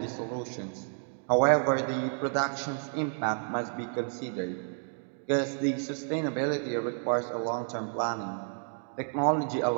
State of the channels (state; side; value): silent; left; 57 dB below the other